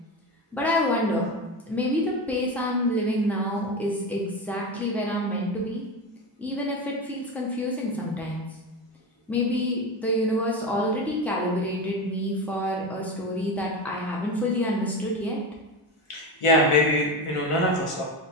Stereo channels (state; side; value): normal; both; correlation 0.21